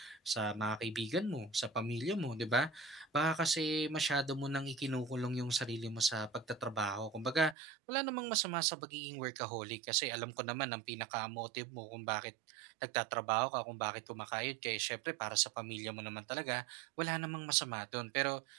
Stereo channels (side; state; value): left; drops out; at 7.6 s